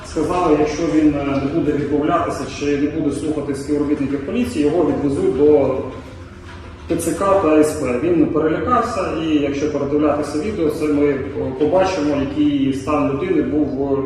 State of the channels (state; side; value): identical; both; correlation 1.00